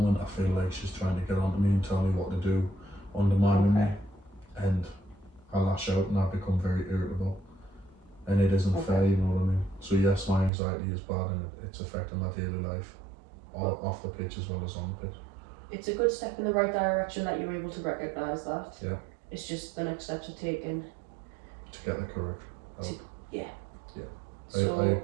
I feel like she's trying to get onto me and tell me what to do, undermining me, Okay. and I lash out and I become very irritable, and it isn't fair, you know what I mean? So yes, my anxiety is bad and it's affecting my daily life, off the pitch as well as on the pitch. It's a good step in the right direction that you're able to recognise that. Yeah. It's just the next steps are taken. To get the correct help. Yeah. Yeah. So I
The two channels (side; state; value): left; drops out; at 10.5 s